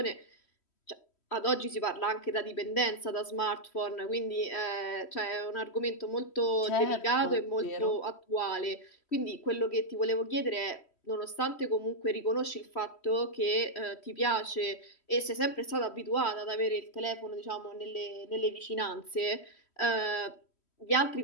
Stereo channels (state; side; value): late; right; 3.1 ms